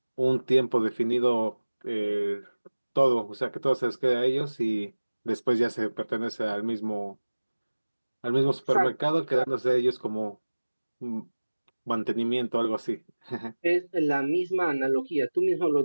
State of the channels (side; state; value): both; inverted; correlation -1.00